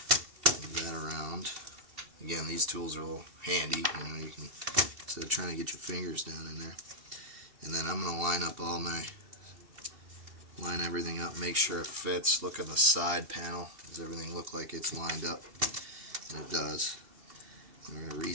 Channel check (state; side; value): late; left; 2.7 ms